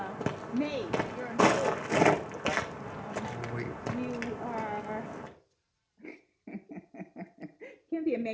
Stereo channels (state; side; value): identical; both; correlation 1.00